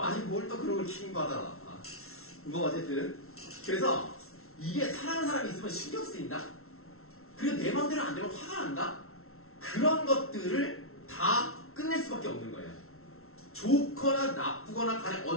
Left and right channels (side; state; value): right; late; 0.62 ms